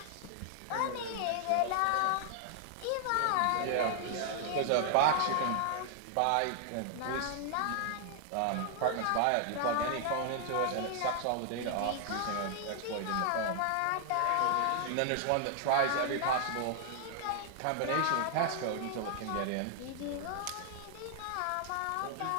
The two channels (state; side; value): different; both; correlation 0.00